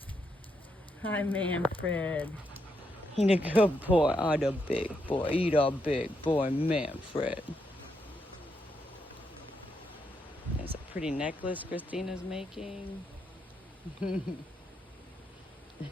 Hi, Manfred. He a good boy. Oh, the big boy. He the big boy, Manfred. There's a pretty necklace Christina's making. And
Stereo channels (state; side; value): normal; both; correlation 0.80